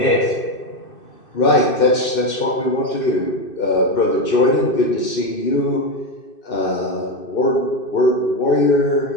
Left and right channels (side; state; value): right; late; 2.6 ms